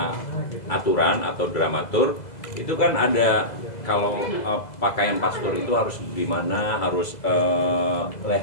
aturan atau dramatur itu kan ada, kalau pakaian pastor itu harus gimana, harus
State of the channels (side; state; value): right; late; 2.0 ms